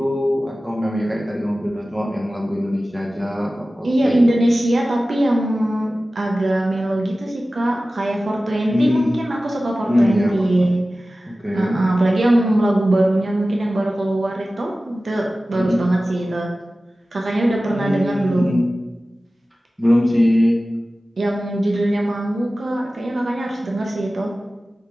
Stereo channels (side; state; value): both; normal; correlation 0.96